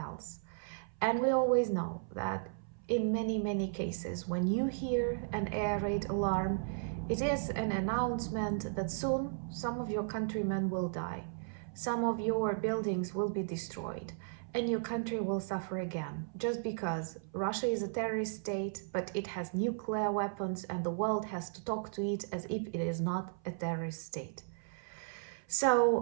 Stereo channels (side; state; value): left; silent; 54 dB below the other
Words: And we always know that in many cases, when you hear an air raid alarm, it is an announcement that soon some of your countrymen will die, some of your buildings will be destroyed, and your country will suffer again, just because Russia is a terrorist state, but it has nuclear weapons and the world has to talk to it as if it is not a terrorist state.